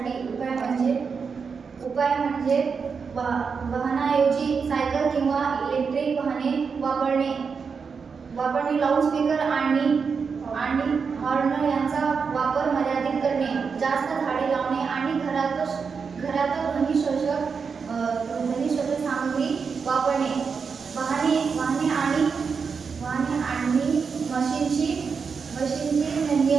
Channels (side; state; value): left; quieter; 5.6 dB